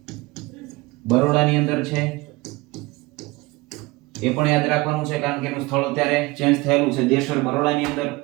બરોડાની અંદર છે. એ પણ યાદ રાખવાનું છે, કારણ કે એનું સ્થળ અત્યારે ચેન્જ થયેલું છે. દેશર બરોડાની અંદર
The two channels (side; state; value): left; quieter; 22.6 dB